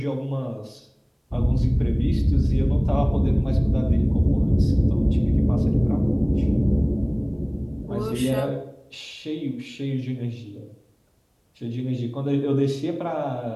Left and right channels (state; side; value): identical; both; correlation 1.00